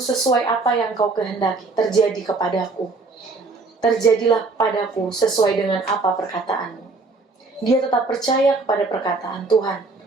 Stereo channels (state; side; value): quieter; left; 3.7 dB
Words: apa yang kau kehendaki, terjadi kepadaku. Terjadilah padaku sesuai dengan apa perkataanmu. Dia tetap percaya kepada perkataan Tuhan,